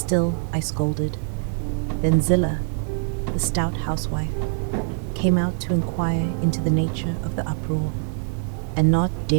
I scolded. Then Zillah, the stout housewife, came out to inquire into the nature of the uproar, and not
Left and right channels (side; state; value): left; silent; 63 dB below the other